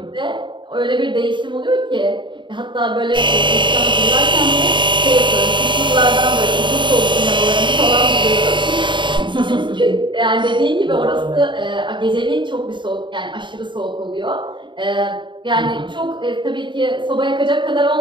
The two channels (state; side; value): late; left; 0.23 ms